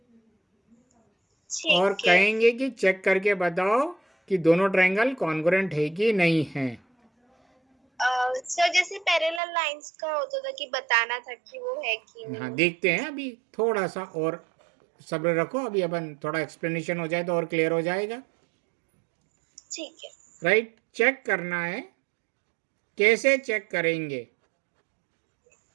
और ठीक है। कहेंगे कि चेक करके बताओ कि दोनों ट्रायंगल कॉन्ग्रुएंट है कि नहीं है। सर जैसे पैरेलल लाइंस का होता था कि बताना था कि वो है कि हाँ नहीं। देखते हैं, अभी थोड़ा सा और सब्र रखो, अभी अपन थोड़ा एक्सप्लेनेशन हो जाए तो और क्लियर हो जाएगा। ठीक है। राइट, चेक करना है, कैसे चेक करेंगे,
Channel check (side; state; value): left; drops out; at 9.4 s